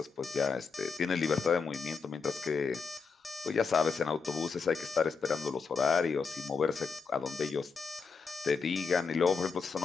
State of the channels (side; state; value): right; quieter; 5.2 dB